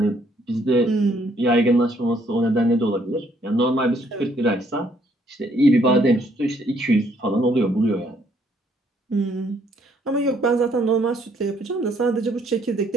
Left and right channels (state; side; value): normal; both; correlation 0.67